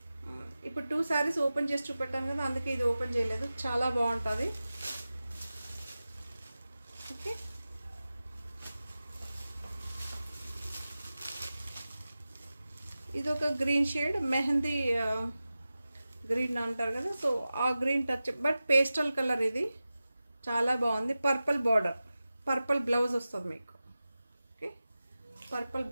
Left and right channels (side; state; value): both; inverted; correlation -0.95